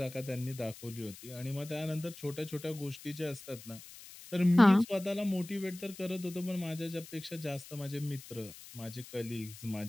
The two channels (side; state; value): left; noise; hiss, 16 dB below the sound